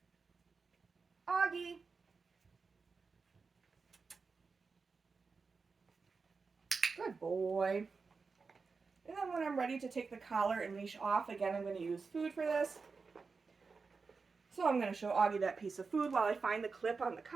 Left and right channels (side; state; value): left; quieter; 4.7 dB